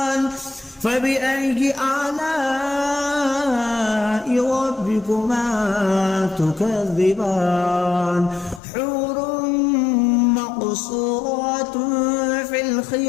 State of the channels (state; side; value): drops out; right; at 8.6 s